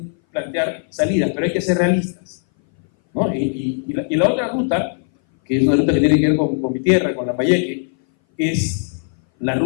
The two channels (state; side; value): silent; right; 60 dB below the other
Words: plantear salidas, pero hay que ser realistas, ¿no? Y la otra ruta, que es una ruta que tiene que ver con mi tierra, con Lambayeque, es la